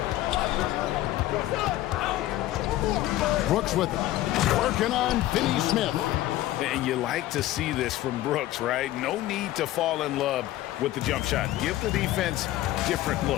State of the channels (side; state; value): right; quieter; 15.1 dB